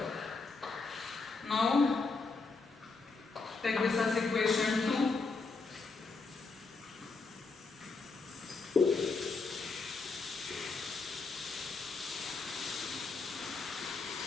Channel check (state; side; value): quieter; right; 4.1 dB